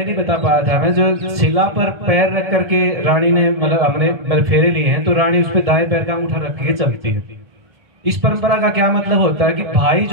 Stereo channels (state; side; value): late; left; 1.7 ms